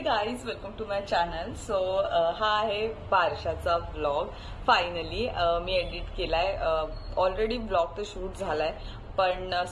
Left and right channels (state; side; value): identical; both; correlation 1.00